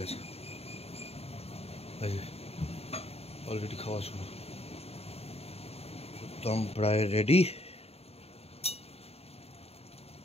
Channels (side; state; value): right; late; 0.29 ms